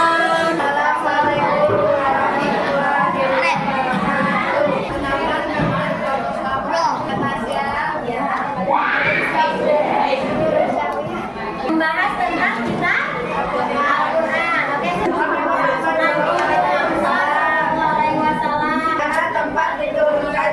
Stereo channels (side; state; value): both; identical; correlation 1.00